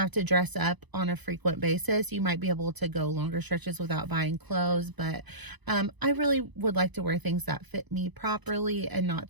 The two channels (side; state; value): left; late; 1.0 ms